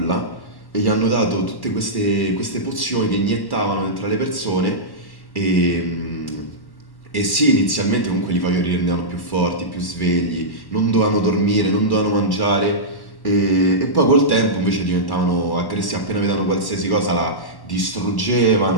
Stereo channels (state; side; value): late; right; 1.1 ms